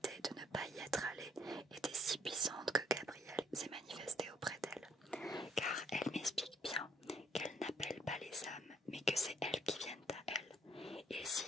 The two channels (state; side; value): normal; both; correlation 0.66